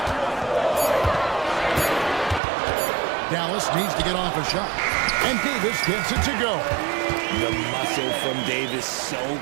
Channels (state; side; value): drops out; left; at 2.4 s